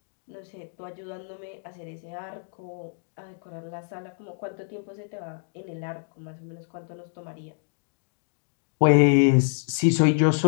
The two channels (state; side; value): silent; right; digital silence